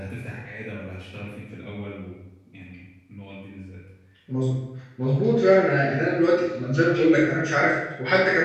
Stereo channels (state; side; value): identical; both; correlation 1.00